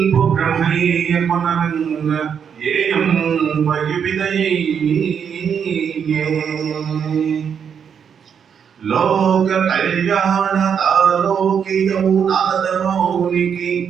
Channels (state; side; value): quieter; left; 7.4 dB